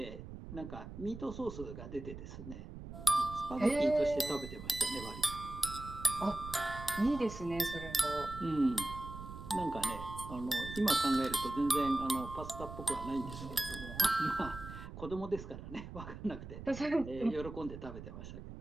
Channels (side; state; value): right; noise; rumble, 11 dB below the sound